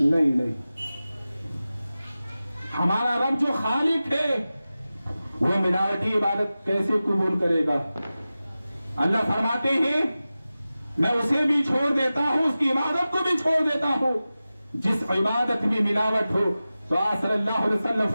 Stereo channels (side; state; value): both; inverted; correlation -0.95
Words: ہمارا رب جو خالق ہے وہ ملاوٹی عبادت کیسے قبول کرے گا؟ اللہ فرماتے ہیں میں اسے بھی چھوڑ دیتا ہوں, اس کی عبادت کو بھی چھوڑ دیتا ہوں جس عبادت میں ملاوٹ ہو. تو آپ صلی اللہ علیہ وسلم